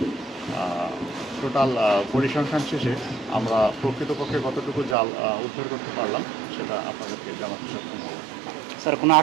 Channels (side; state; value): left; drops out; at 5.0 s